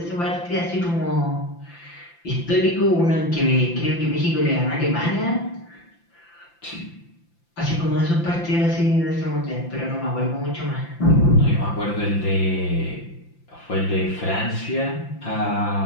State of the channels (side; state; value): right; late; 5.8 ms